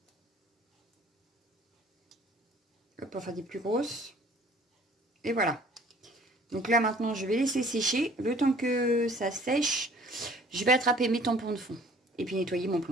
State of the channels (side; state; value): both; normal; correlation 0.54